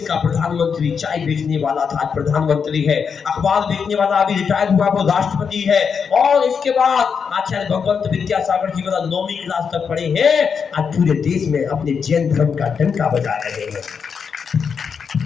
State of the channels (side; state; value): right; quieter; 6.3 dB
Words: का प्रधानमंत्री चाय बेचने वाला था, आज प्रधानमंत्री है। अखबार बेचने वाला अभी रिटायर हुआ, वो राष्ट्रपति है। और इसके बाद आचार्य भगवंत विद्यासागर जी वाला 9वीं क्लास तक पढ़े हैं, आज पूरे देश में अपने जैन धर्म का डंका बजा रहे हैं।